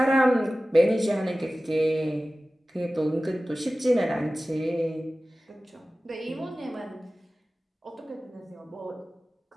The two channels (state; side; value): normal; both; correlation 0.96